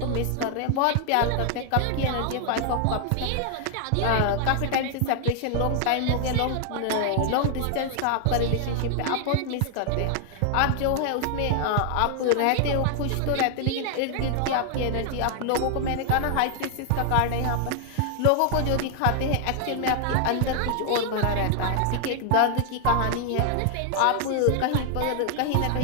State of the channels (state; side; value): different; both; correlation 0.00